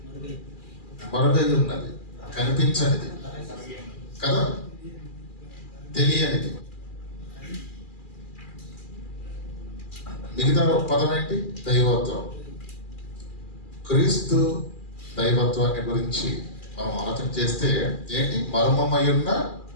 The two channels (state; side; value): late; right; 2.4 ms